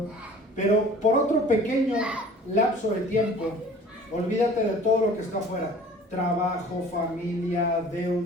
Pero por otro pequeño lapso de tiempo, olvídate de todo lo que está afuera. Trabajo, familia,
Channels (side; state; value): both; normal; correlation 0.47